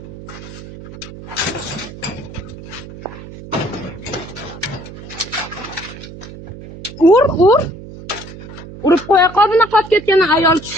Ur. Urib qo'ya qol bunaqa qolib ketgan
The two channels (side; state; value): right; noise; hum, 14 dB below the sound